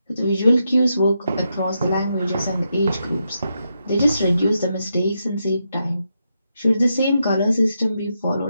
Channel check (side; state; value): both; inverted; correlation -0.84